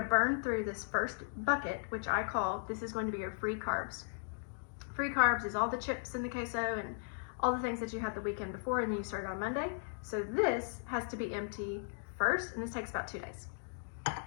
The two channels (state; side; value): silent; right; digital silence